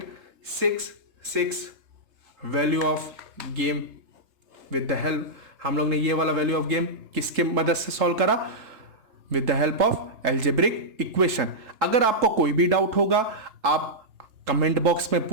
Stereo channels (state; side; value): late; left; 3.3 ms